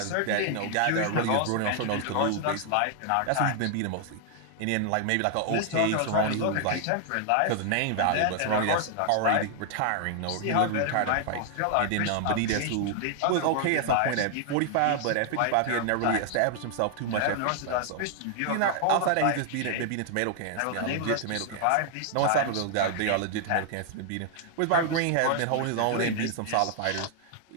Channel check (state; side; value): different; both; correlation 0.00